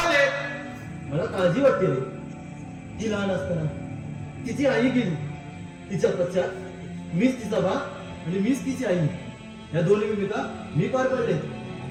मला काळजी वाटते रे. ती लहान असताना तिची आई गेली. तिच्या पश्चात मीच तिचा बाप आणि मीच तिची आई. या दोन्ही भूमिका मी पार पडले.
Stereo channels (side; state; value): both; identical; correlation 1.00